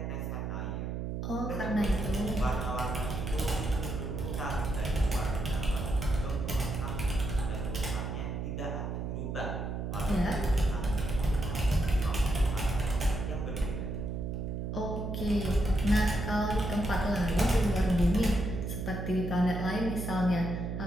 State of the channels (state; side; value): noise; right; hum, 3 dB below the sound